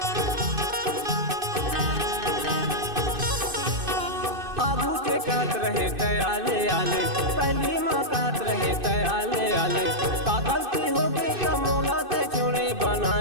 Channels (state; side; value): late; left; 2.6 ms